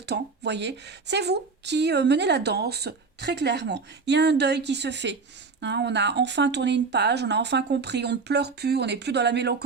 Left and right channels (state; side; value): quieter; left; 4.6 dB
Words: temps, voyez, c'est vous qui menez la danse très clairement. Il y a un deuil qui se fait. Hein, on a enfin tourné une page, on a enfin compris, on ne pleure plus, on n'est plus dans la